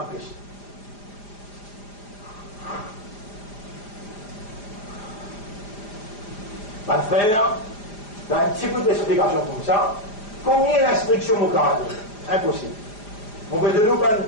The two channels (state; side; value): late; right; 4.9 ms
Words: péchés. Pas faire dans un petit peu d'explication comme ça, combien d'instructions au caractère? Impossible. On veut de nous une